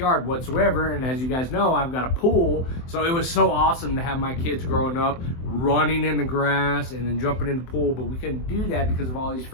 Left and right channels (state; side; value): late; right; 23 ms